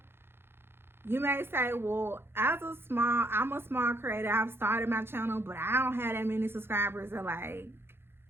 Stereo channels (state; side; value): late; left; 0.11 ms